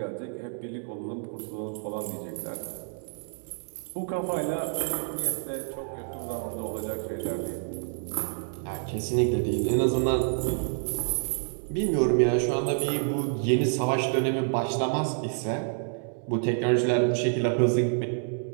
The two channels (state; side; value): silent; left; 59 dB below the other